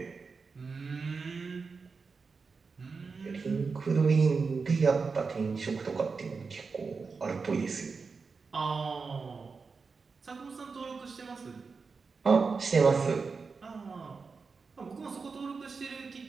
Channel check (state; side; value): quieter; left; 4.8 dB